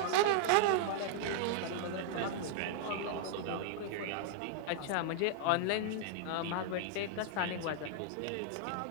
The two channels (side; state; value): both; different; correlation -0.01